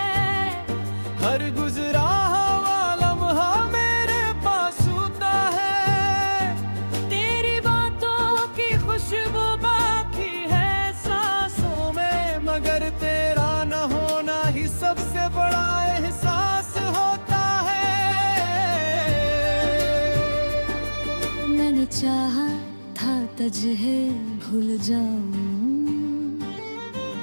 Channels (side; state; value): both; inverted; correlation -1.00